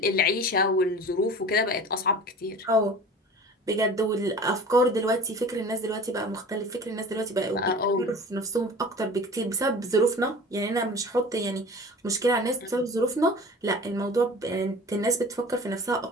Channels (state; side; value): normal; both; correlation 0.40